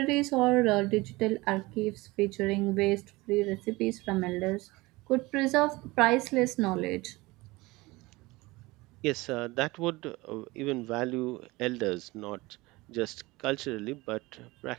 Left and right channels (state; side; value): quieter; left; 21.6 dB